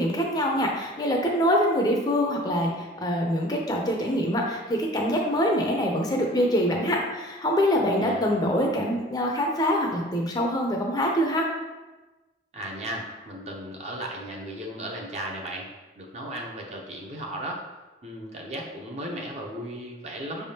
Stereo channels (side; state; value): both; normal; correlation 0.44